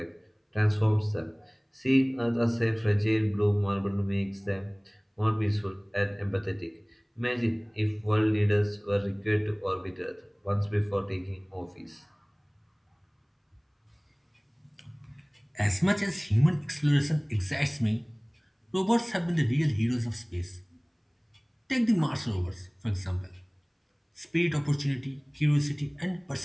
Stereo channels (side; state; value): both; identical; correlation 1.00